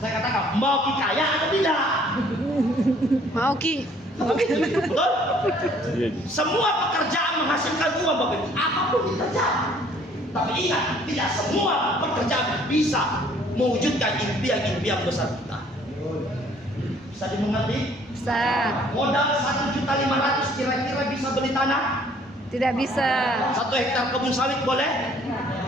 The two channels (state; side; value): normal; both; correlation 0.59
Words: katakan mau kaya atau tidak? Mau Ki. Betul? Semua pekerjaan menghasilkan uang Bapak Ibu, apapun pekerjaan. Tapi ingat, tidak semua pekerjaan bisa mewujudkan impian-impian besar kita. Bisa dimengerti? Bisa. Modal 1.500.000 kira-kira bisa beli tanah? Tidak bisa. 1 hektar kebun sawit boleh?